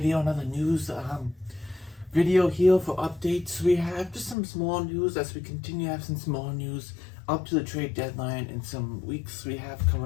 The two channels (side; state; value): right; drops out; at 4.4 s